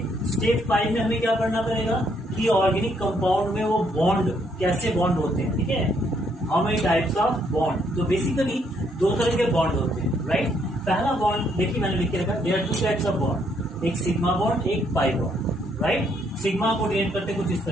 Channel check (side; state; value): both; normal; correlation 0.71